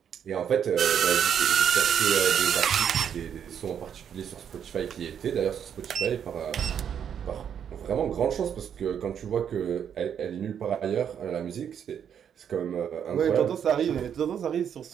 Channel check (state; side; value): quieter; left; 8.4 dB